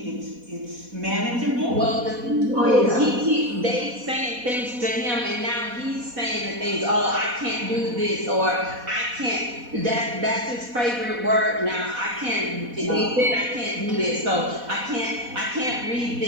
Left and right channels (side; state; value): left; late; 4.1 ms